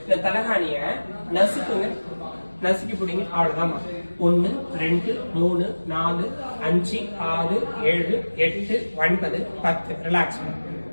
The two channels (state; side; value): inverted; both; correlation -1.00